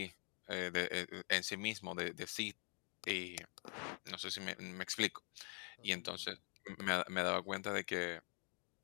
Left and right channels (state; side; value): quieter; right; 39.9 dB